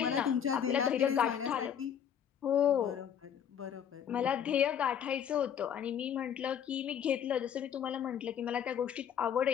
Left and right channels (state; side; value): quieter; right; 8.7 dB